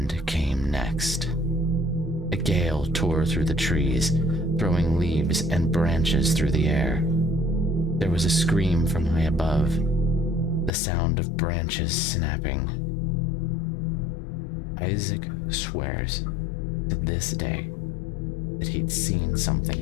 came next. A gale tore through the trees, throwing leaves and branches through the air. There was a scream from high above, the sound of branches snapping. Isaac swears to this day that he'd seen something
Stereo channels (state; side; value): drops out; right; at 10.7 s